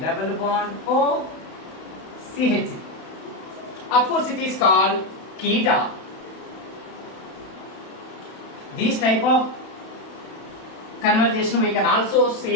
bond O, CH. Of course, it is called keta. This type of conversation we can also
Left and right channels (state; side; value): late; right; 31 ms